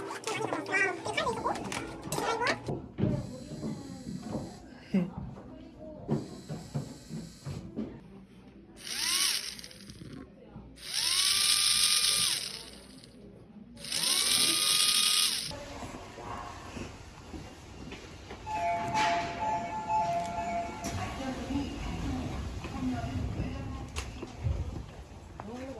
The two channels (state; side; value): identical; both; correlation 1.00